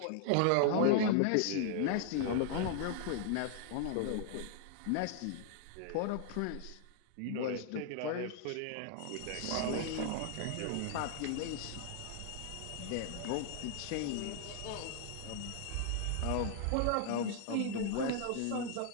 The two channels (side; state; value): both; different; correlation 0.00